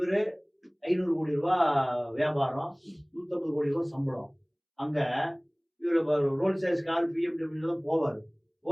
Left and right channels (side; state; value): both; identical; correlation 1.00